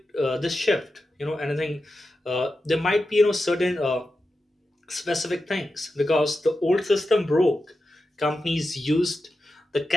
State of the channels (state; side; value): normal; both; correlation 0.90